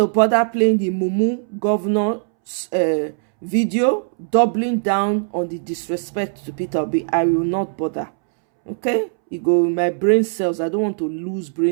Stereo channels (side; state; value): left; silent; 66 dB below the other